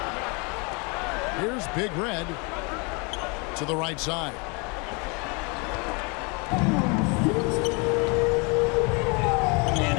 Here's Big Red to the right side. And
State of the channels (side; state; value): right; quieter; 31.2 dB